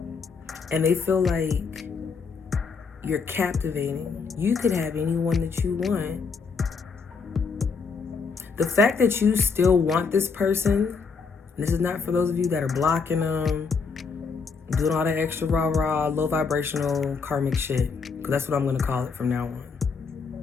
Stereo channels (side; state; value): right; quieter; 5.1 dB